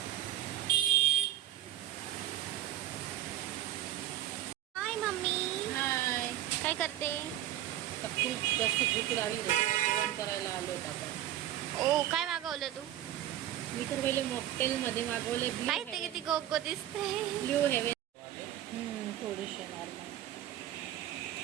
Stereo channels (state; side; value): quieter; left; 12.8 dB